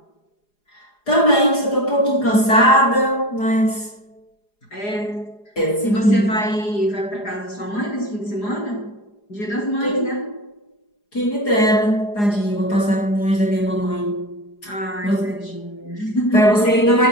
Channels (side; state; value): right; late; 4.9 ms